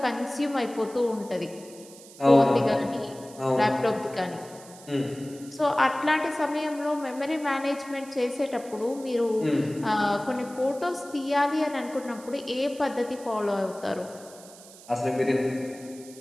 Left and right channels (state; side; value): noise; right; hiss, 20 dB below the sound